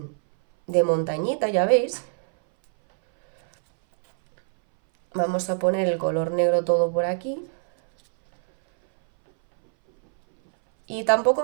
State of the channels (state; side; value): silent; left; 60 dB below the other